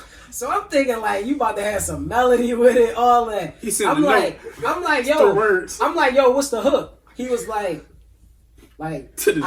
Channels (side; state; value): both; identical; correlation 1.00